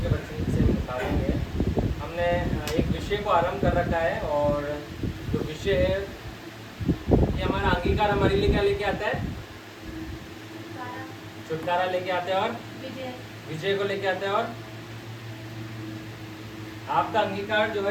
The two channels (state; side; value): identical; both; correlation 1.00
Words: के वचन से निकालेंगे। हमने एक विषय को आरंभ कर रखा है और जो विषय है ये हमारा अंगीकार हमारे लिए क्या लेके आता है? छुटकारा लेके आते हैं और विजय को लेके आते हैं। और आपका अंगीकार जो